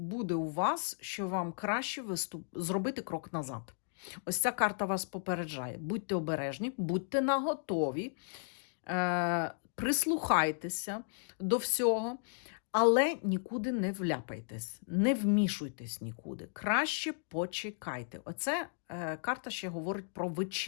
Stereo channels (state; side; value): silent; right; digital silence